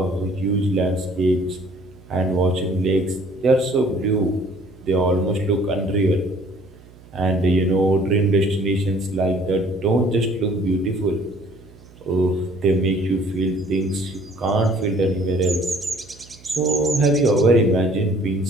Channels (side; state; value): right; noise; hum, 23 dB below the sound